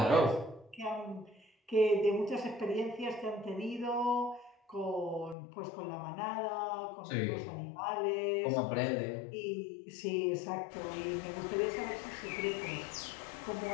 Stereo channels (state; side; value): drops out; right; at 5.4 s